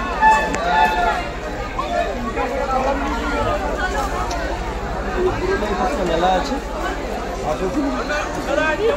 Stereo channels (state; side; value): identical; both; correlation 1.00